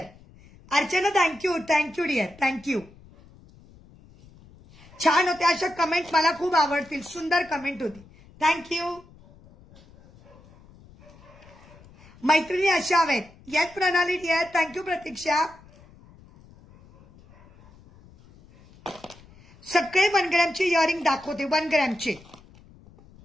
Archana thank you dear, thank you. छान होते अशा कमेंट, मला खूप आवडतील. सुंदर कमेंट होती. थँक्यू. मैत्रिणी अशा हवेत. येस प्रणाली डियर, थँक्यू प्रतीक्षा. सगळे 1 ग्रॅमचे इयरिंग दाखवते. 1 ग्रॅमचे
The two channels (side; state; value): left; noise; rumble, 24 dB below the sound